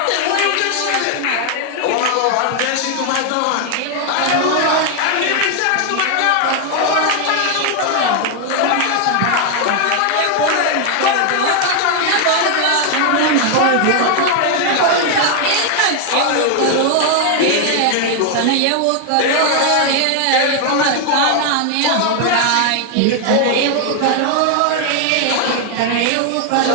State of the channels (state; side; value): different; both; correlation 0.00